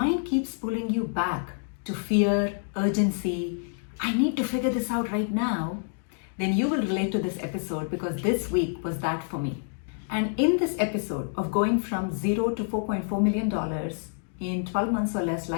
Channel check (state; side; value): silent; right; digital silence